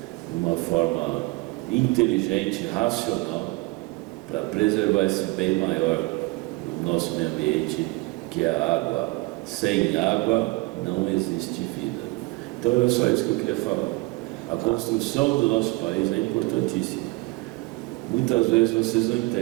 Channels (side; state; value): left; quieter; 23.7 dB